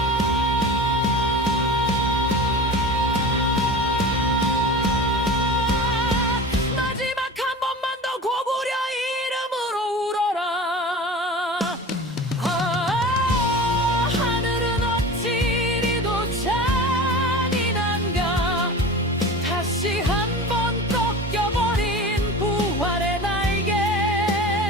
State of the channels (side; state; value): both; normal; correlation 0.33